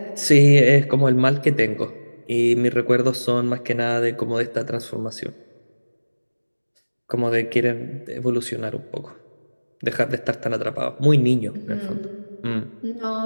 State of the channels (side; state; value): both; inverted; correlation -1.00